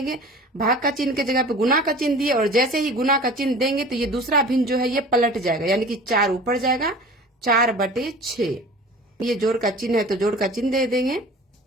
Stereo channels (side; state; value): both; normal; correlation 0.41